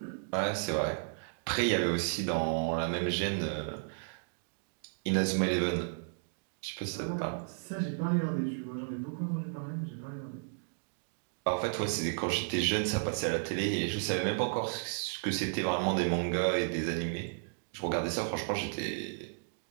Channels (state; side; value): silent; left; digital silence